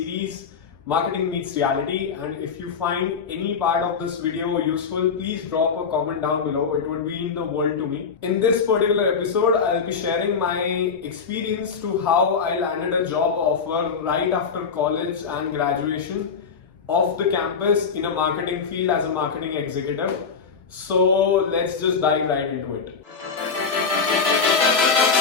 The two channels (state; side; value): quieter; right; 5.7 dB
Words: Marketing Meets Reality. And if you find any part of this video useful, please drop a comment down below. It would mean the world to me. In this particular episode, I'll be sharing my experience to how I landed a job offer right after college and graduation off the campus in a marketing field as a marketing executive. So let's just dive right into it.